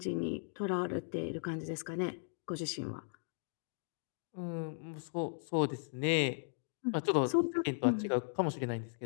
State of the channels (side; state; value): right; silent; digital silence